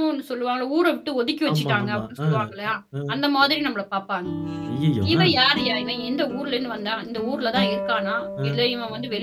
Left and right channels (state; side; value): identical; both; correlation 1.00